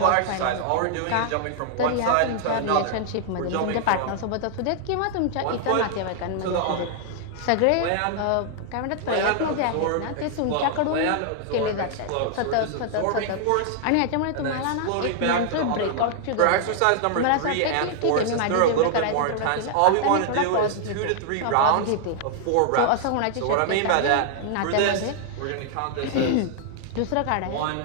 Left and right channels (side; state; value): both; different; correlation -0.01